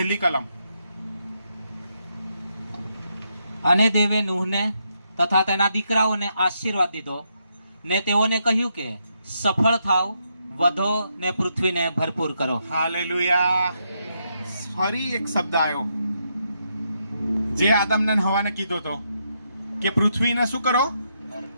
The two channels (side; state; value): both; inverted; correlation -0.80